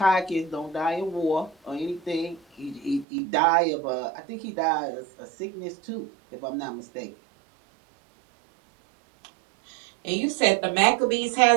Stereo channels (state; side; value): drops out; left; at 3.1 s